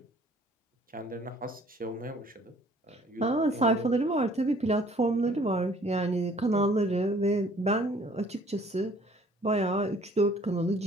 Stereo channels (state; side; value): normal; both; correlation 0.57